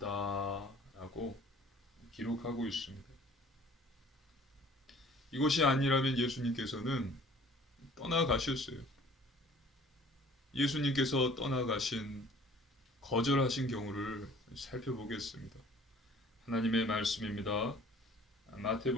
기록하고 있습니다. 이것이 아니라면 예수님께서는 떠나가셨어요. 예수님께서 떠나가신 거절하신 경우를 살펴보겠습니다. 하나님의 말씀입니다.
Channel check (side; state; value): both; normal; correlation 0.52